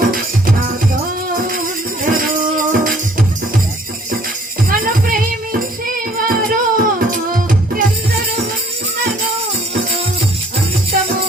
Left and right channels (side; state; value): both; normal; correlation 0.59